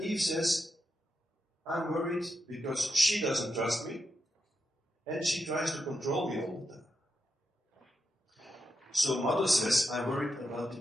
Eve says, I'm worried because she doesn't trust me, and she tries to control me all the time. So mother says, I'm worried about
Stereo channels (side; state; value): both; normal; correlation 0.86